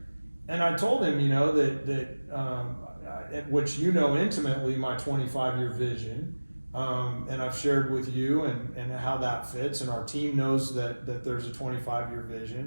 And I told him, which intimately, my 25-year vision, and I've shared with you and how that fits, and our team knows that there's a 25-year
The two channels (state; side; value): inverted; both; correlation -1.00